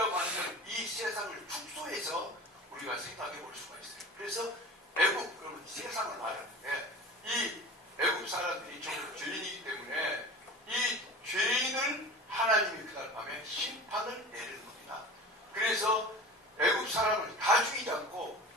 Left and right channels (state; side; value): normal; both; correlation 0.36